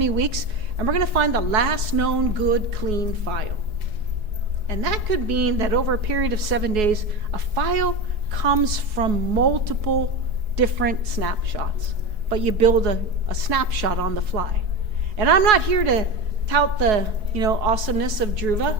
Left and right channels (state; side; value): late; left; 4.7 ms